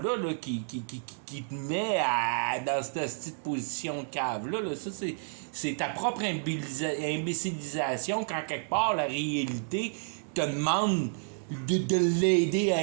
là, qui te met dans cette petite position de cave-là, là, ça, c'est ta propre imbécilisation quand, quelque part, la réalité te demande de l'aider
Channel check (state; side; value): silent; left; digital silence